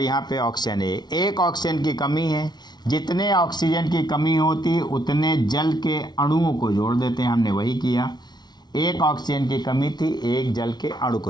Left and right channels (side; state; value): right; late; 0.20 ms